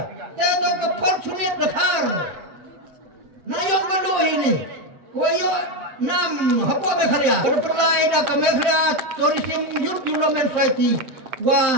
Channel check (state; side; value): late; left; 7.6 ms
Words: Tapi ke fortunate dekar. Nayong kalau ini, koyo nam apa bekerja. Berpelai dah kami kerja tourism youth development society.